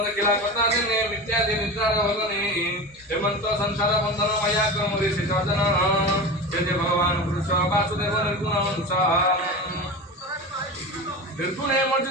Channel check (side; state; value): both; normal; correlation 0.28